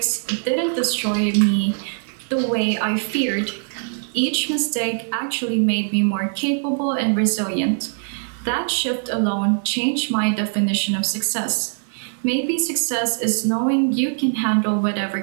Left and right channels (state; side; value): silent; left; 59 dB below the other